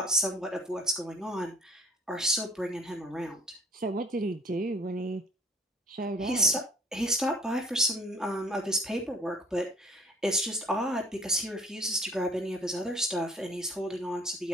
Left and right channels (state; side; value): normal; both; correlation 0.52